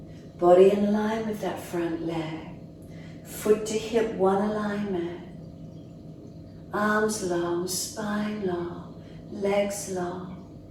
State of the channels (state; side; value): identical; both; correlation 1.00